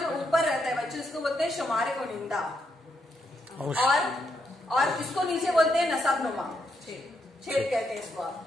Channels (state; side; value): normal; both; correlation 0.79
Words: ऊपर रहता है बच्चों, इसको बोलते हैं शुमारे को निंदा, और इसको नीचे बोलते हैं नसबनुमा, छेद कहते हैं इसको।